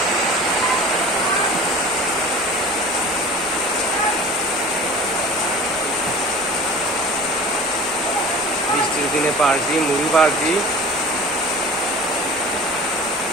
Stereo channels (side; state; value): both; normal; correlation 0.40